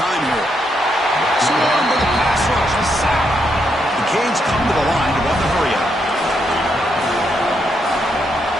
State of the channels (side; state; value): both; normal; correlation 0.79